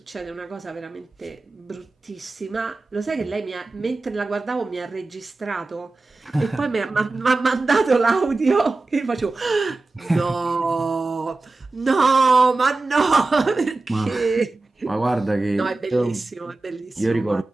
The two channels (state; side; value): quieter; left; 3.3 dB